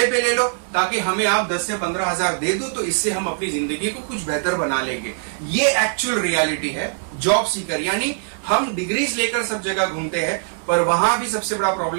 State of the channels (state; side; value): silent; left; digital silence